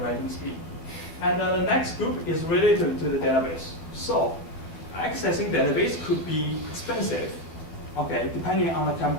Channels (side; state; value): right; late; 12 ms